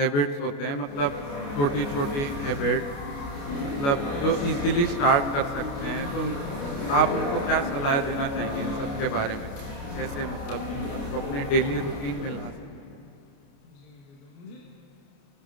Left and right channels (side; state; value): right; late; 29 ms